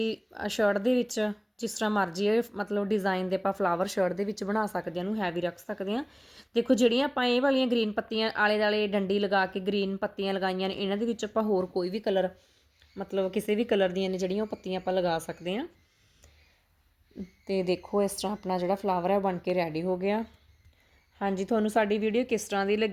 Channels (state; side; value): identical; both; correlation 1.00